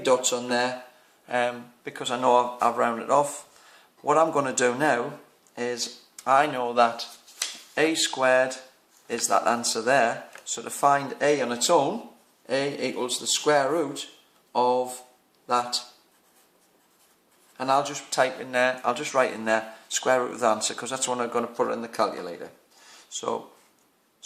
dots on there because I know I've rounded off. What I'm going to do now is I know that A squared is that answer there. So to find A on its own, A equals the square root of that, and I'll just type in there, I'll just write in there square root of the answer because that's when I'm going to put it in the calculator. So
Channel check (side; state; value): both; identical; correlation 1.00